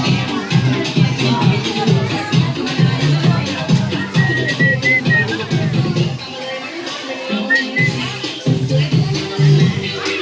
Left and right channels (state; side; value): identical; both; correlation 1.00